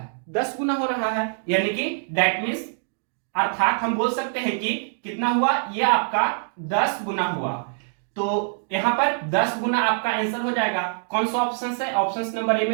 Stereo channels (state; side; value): silent; left; digital silence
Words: 10 गुना हो रहा है, यानी कि दैट मीन्स अर्थात हम बोल सकते हैं कि कितना हुआ, ये आपका 10 गुना हुआ। तो यहां पर 10 गुना आपका आंसर हो जाएगा। कौन सा ऑप्शन है? ऑप्शन नंबर ए